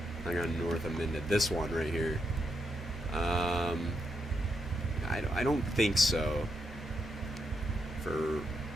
Hang on, north of Minden. This one right here. I don't think so. For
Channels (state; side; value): normal; both; correlation 0.81